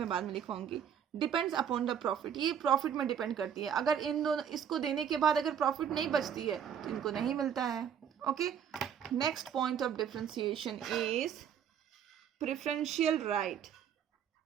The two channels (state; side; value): quieter; left; 8.4 dB